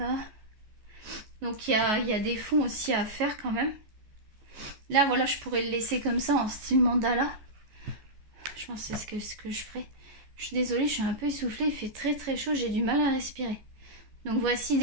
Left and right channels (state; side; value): late; left; 14 ms